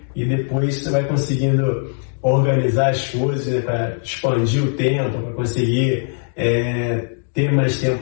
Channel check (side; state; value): right; silent; digital silence